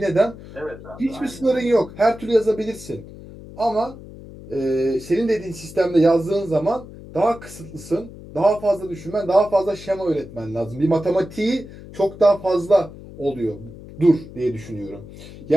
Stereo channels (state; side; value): noise; left; hum, 16 dB below the sound